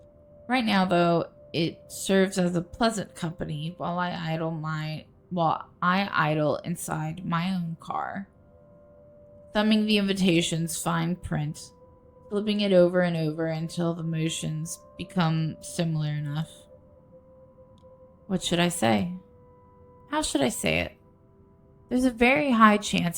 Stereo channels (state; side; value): identical; both; correlation 1.00